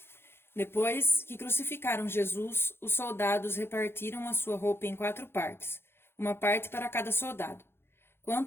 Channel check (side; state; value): right; late; 0.11 ms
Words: Depois que crucificaram Jesus, os soldados repartiram a sua roupa em 4 partes, uma parte para cada soldado.